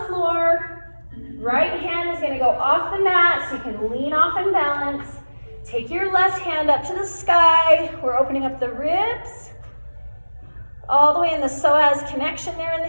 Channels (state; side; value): inverted; both; correlation -1.00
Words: floor. Right hand is gonna go off the mat so you can lean off and balance. Take your left hand up to the sky. We're opening up the ribs. All the way in the psoas connection there in